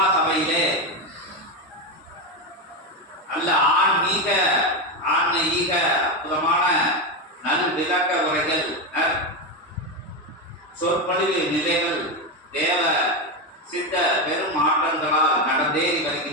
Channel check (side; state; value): both; normal; correlation 0.12